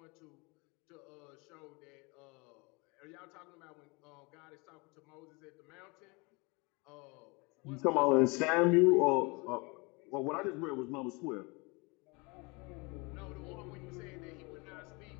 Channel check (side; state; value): right; quieter; 28.2 dB